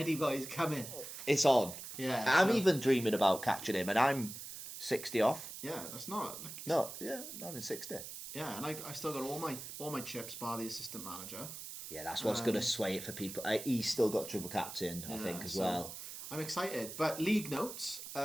boy's coming. It's on. Yeah. I'm even dreaming about catching him, and I'm 60 off. Yeah, that's not. I'm in 60. Yeah, and I still got all my chips bar the assistant manager. Yeah, that's what's going to sway it for people. He's still got triple captain, I think, as well. I'm excited. But league notes,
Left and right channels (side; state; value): right; noise; hiss, 10 dB below the sound